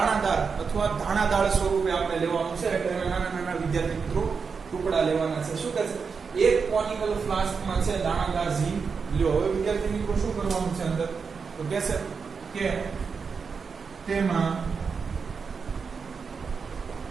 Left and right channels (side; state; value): left; quieter; 5.5 dB